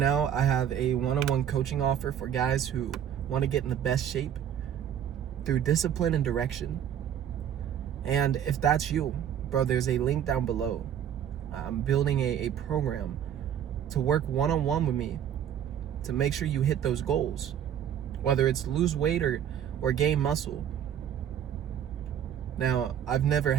I have a one-on-one coaching offer for guys who want to get in the best shape through discipline and direction. And if that's you, bro, there's a link down below. I'm building a program to work one-on-one with me to make sure you hit those goals, whether it's lose weight or gain muscle. Now, I've never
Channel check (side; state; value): left; quieter; 9.6 dB